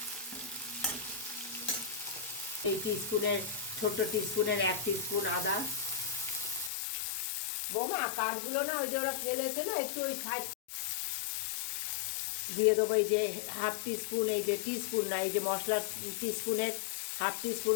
এই টিস্পুনের ছোট্ট টিস্পুনের 1 টিস্পুন আদা। বৌমা কাঠগুলো না ওই যে ওরা ফেলেছে না, একটু ওই সাইড দিয়ে দেবো। এই যে হাফ টিস্পুন, এই যে টিস্পুন না, এই যে মশলা টিস্পুনের হাফ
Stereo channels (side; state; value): right; drops out; at 6.7 s